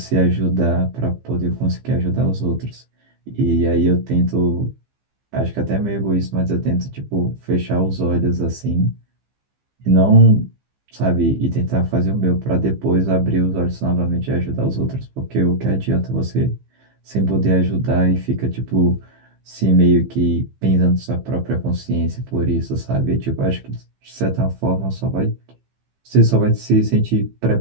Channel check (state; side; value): late; left; 15 ms